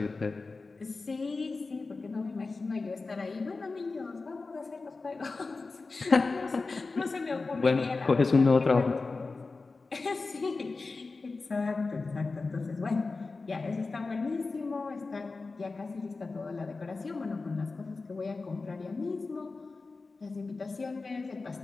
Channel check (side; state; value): right; quieter; 3.9 dB